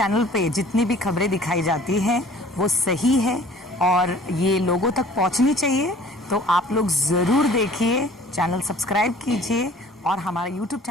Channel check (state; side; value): normal; both; correlation 0.50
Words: पे जितनी भी खबरें दिखाई जाती हैं वो सही है और ये लोगों तक पहुंचनी चाहिए, तो आप लोग ज़रूर देखिए, चैनल सब्सक्राइब कीजिए और हमारा YouTube